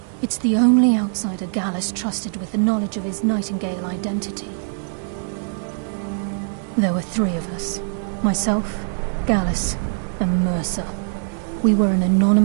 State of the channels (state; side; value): silent; left; digital silence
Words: It's the only outsider Gallus trusted with the knowledge of his Nightingale identity. There were 3 of us. Myself, Gallus, and Mercer. We were an